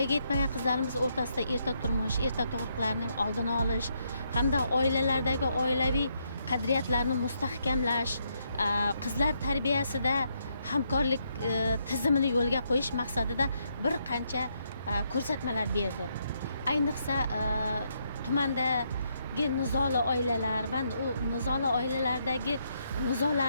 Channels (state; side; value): inverted; both; correlation -0.76